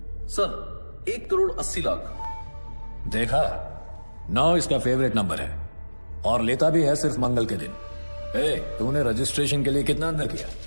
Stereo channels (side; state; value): both; inverted; correlation -1.00